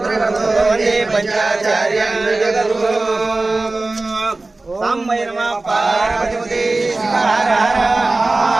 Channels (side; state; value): left; quieter; 3.2 dB